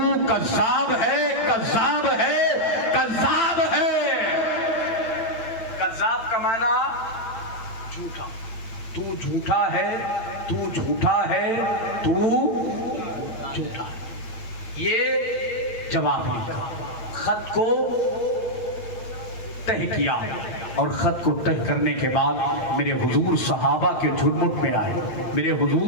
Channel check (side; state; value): right; late; 8.6 ms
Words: کذاب ہے, کذاب ہے, کذاب ہے. کذاب کا معنی جھوٹا, تو جھوٹا ہے, تو جھوٹا ہے, تو جھوٹا. یہ جواب لکھا, خط کو تہہ کیا, اور خط کو تہہ کرنے کے بعد میرے حضور صحابہ کے جھرمٹ میں آئے, میرے